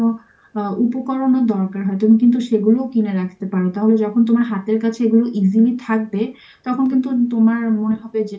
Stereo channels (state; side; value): identical; both; correlation 1.00